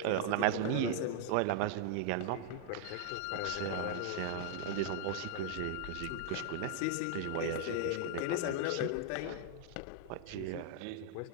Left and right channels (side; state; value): both; different; correlation -0.01